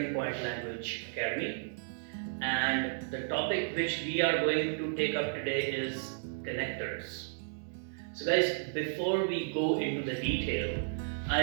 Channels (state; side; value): silent; left; digital silence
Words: Point Language Academy. And the topic which we are going to take up today is connectors. So, guys, before we go into the detail,